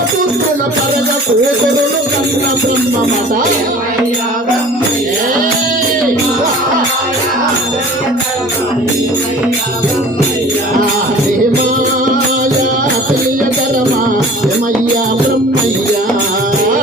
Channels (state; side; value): normal; both; correlation 0.44